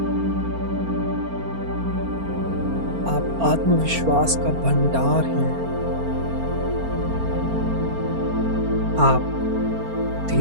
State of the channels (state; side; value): late; left; 4.4 ms